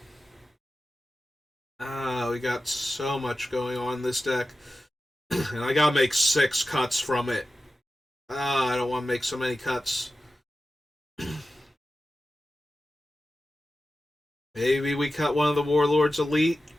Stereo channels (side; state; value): both; normal; correlation 0.93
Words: We got so much going on in this deck. And I gotta make 6 cuts from it. I don't want to make so many cuts. Maybe we cut one of the Warlords Elite